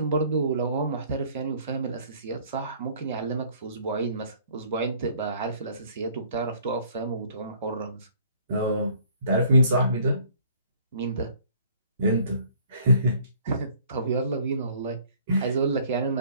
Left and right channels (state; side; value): inverted; both; correlation -0.57